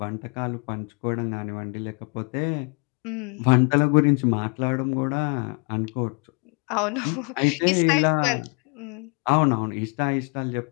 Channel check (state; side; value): quieter; right; 36.1 dB